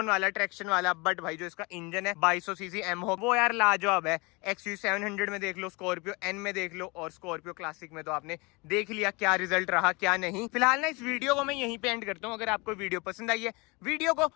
वाला, ट्रैक्शन वाला। बट भाई जो इसका इंजन है 2200 सीसी एमहो, वो यार लाजवाब है। XUV 700 में देख लो, स्कॉर्पियो N में देख लो, और स्कॉर्पियो क्लासिक में तो आपने देख लिया क्या रिजल्ट रहा क्या नहीं। फिलहाल ना इस वीडियो को मैं यहीं पे एंड करता हूँ। अगर आपको वीडियो पसंद आई है, वीडियो को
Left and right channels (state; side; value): quieter; right; 27.0 dB